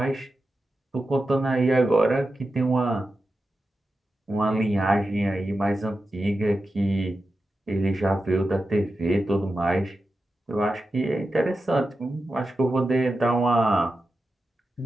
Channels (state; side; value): normal; both; correlation 0.91